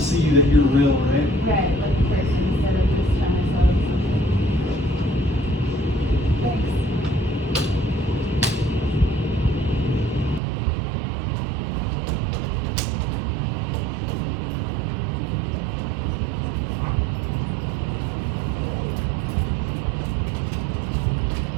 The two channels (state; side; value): drops out; left; at 10.4 s